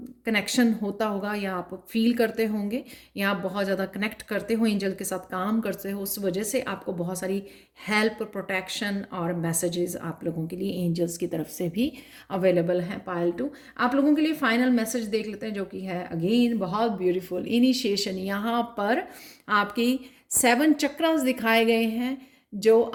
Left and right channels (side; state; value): both; identical; correlation 1.00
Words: कनेक्शन होता होगा, या आप फील करते होंगे, या आप बहुत ज़्यादा कनेक्ट करते हो, एंजल के साथ काम करते हो, उस वजह से आपको बहुत सारी हेल्प, प्रोटेक्शन और मैसेजेस आप लोगों के लिए एंजल्स की तरफ से भी अवेलेबल हैं पायल टू। आप लोगों के लिए फाइनल मैसेज देख लेते हैं, जो कि है अगेन बहुत ब्यूटीफुल इनिशिएशन। यहाँ पर आपकी 7 चक्रास दिखाए गए हैं, जो